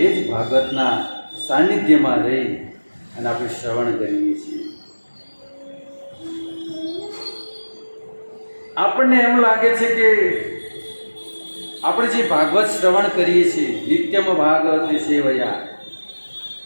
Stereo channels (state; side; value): inverted; both; correlation -1.00